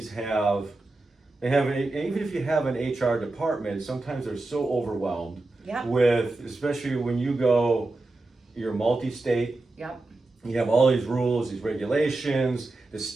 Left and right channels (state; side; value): quieter; left; 3.1 dB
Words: even if you have an HR department, sometimes they're so overwhelmed Yep. with, especially when you're multi-state. Yep. You have all these rules, these regulations. The